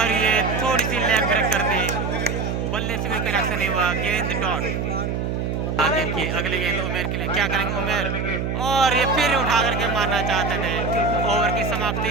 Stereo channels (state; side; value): noise; right; hum, 1 dB below the sound